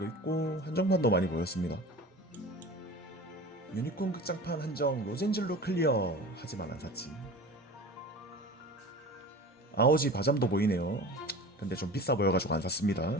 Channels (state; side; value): normal; both; correlation 0.36